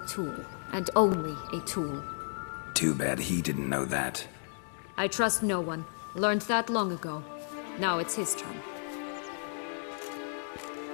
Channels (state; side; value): silent; right; digital silence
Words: tool, and only a tool. Too bad he didn't know that. I trust no one. Learned that long ago. Now it's his turn.